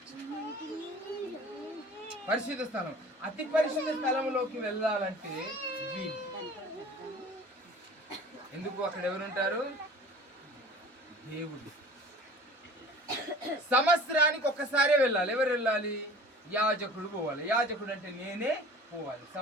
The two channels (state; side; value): normal; both; correlation 0.44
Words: పరిశుద్ధ స్థలం, అతి పరిశుద్ధ స్థలంలోకి వెళ్ళాలంటే ఎందుకు? అక్కడ ఎవరుంటారు? దేవుడు. సంవత్సరానికి ఒక్కసారే వెళ్ళాలి. ఎవరు వెళ్ళాలి? యాజకుడు పోవాలి. యాజకుడు అంటే నేనే పోవాలి